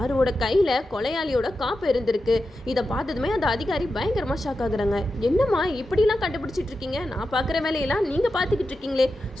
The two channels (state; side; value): normal; both; correlation 0.90